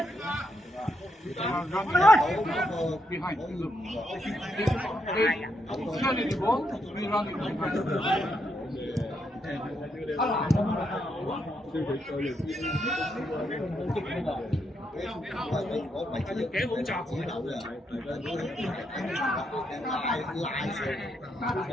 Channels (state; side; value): normal; both; correlation 0.79